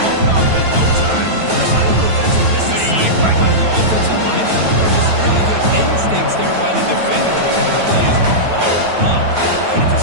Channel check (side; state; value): left; late; 9.1 ms